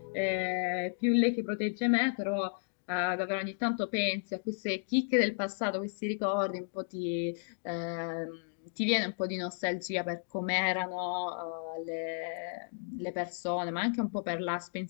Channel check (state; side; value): silent; right; digital silence